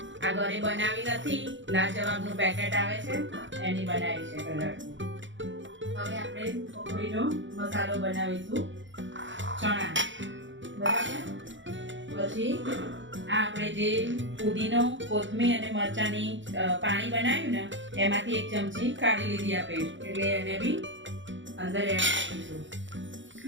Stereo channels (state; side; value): late; left; 0.55 ms